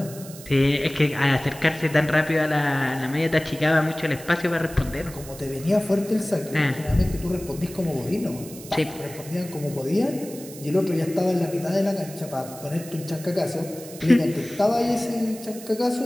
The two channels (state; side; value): noise; right; hiss, 16 dB below the sound